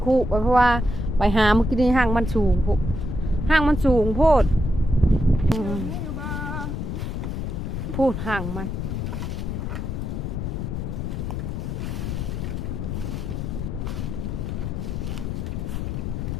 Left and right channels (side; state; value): left; noise; rumble, 3 dB below the sound